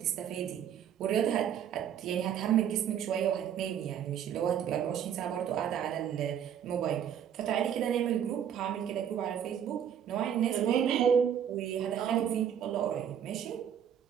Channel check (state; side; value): quieter; left; 9.0 dB